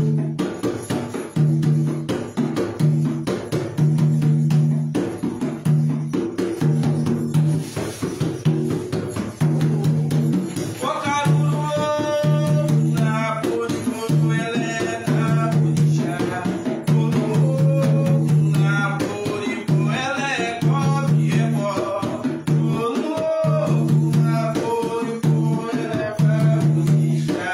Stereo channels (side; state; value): both; identical; correlation 1.00